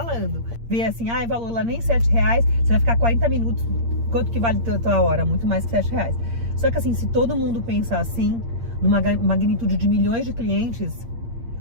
Ver assim, valor lá nem R$7, você vai ficar 40 minutos. Quanto que vale a tua hora? Muito mais que R$7. Só que assim, se todo mundo pensar assim, numa magnitude de milhões de clientes,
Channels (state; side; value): late; left; 8.7 ms